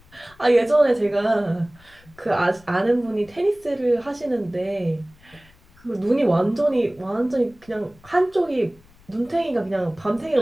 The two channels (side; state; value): left; noise; rumble, 28 dB below the sound